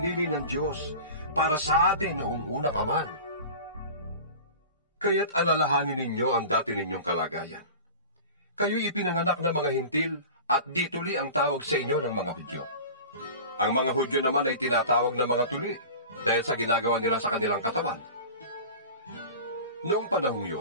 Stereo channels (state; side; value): inverted; both; correlation -0.36